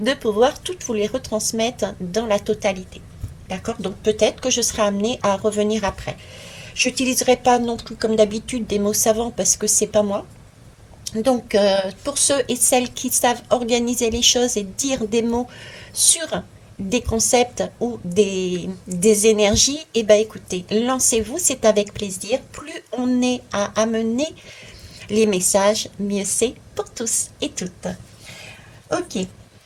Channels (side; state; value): both; identical; correlation 1.00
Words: pouvoir toutes vous les retransmettre dans la totalité. D'accord? Donc peut-être que je serai amenée à revenir après. Je n'utiliserai pas non plus comme d'habitude des mots savants parce que c'est pas moi. Donc pour ceux et celles qui savent organiser les choses et dire des mots sur des concepts ou des énergies, eh ben écoutez, lancez-vous, c'est avec plaisir. Plus on est à amener les messages, mieux c'est pour tous et toutes. Ok.